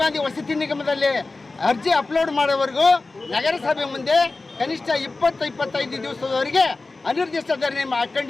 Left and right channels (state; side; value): quieter; right; 3.5 dB